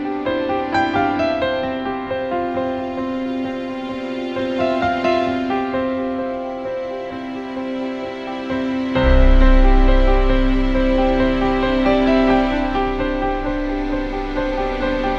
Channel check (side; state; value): both; identical; correlation 1.00